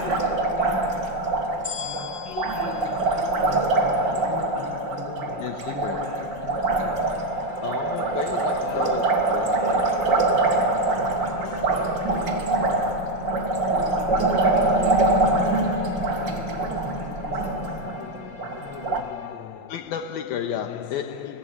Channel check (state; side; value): late; right; 5.7 ms